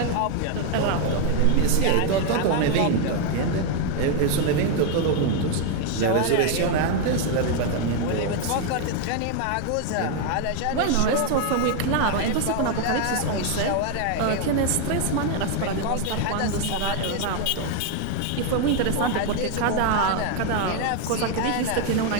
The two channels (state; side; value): different; both; correlation 0.01